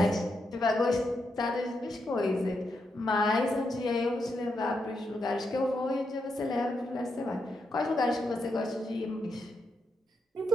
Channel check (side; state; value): both; normal; correlation 0.83